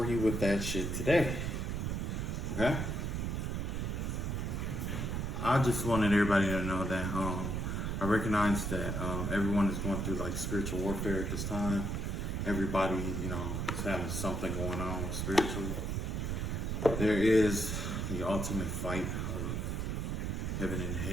you with that shit today. Okay? I just wanted everybody to know that I recognize that everyone is going through like spiritual warfare at this time. Everybody, is having something going on spiritually. There is the ultimate fight of heaven and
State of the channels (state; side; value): noise; right; rumble, 1 dB below the sound